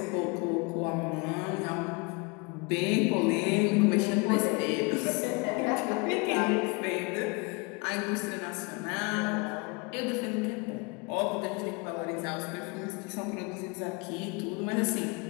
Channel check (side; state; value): right; quieter; 29.8 dB